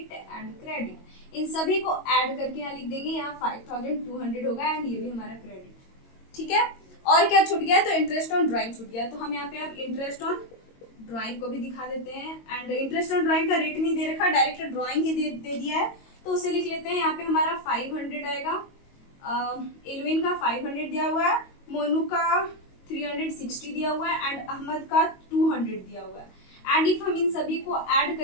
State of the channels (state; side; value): late; right; 22 ms